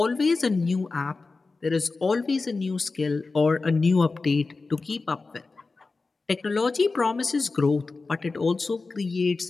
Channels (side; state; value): right; quieter; 3.9 dB